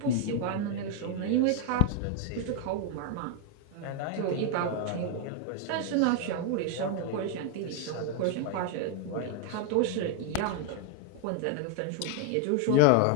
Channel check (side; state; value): both; different; correlation 0.00